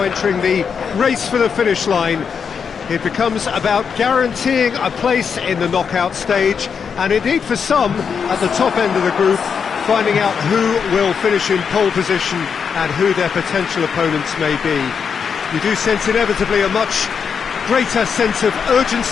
entering the race for the finish line. It becomes about guaranteeing a place in the knockout stage, and indeed for some, at the top end of the group, finding out who will finish in pole position and who their potential opponents may be. You do sense inevitably a much greater sense of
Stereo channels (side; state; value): right; quieter; 6.5 dB